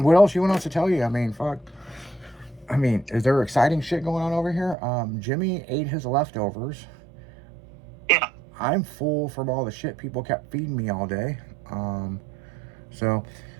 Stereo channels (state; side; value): drops out; left; at 4.8 s